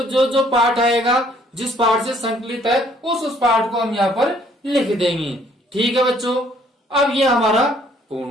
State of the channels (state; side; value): normal; both; correlation 0.63